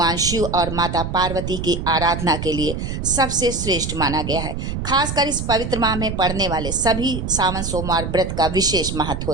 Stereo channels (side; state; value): right; noise; rumble, 5 dB below the sound